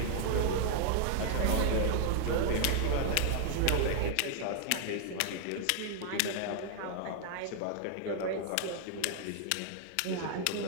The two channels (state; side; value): different; both; correlation 0.00